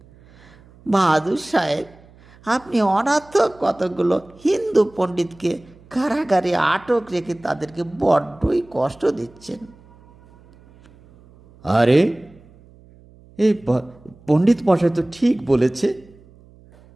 বাহাদুর সাহেব, আপনি অনর্থক কতগুলো হিন্দু পণ্ডিতকে কারাগারে আটক রেখে তাদেরকে বড্ডই কষ্ট দিচ্ছেন। আরে এই পণ্ডিত মশাই তো ঠিক বলেছে,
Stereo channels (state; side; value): noise; right; hum, 26 dB below the sound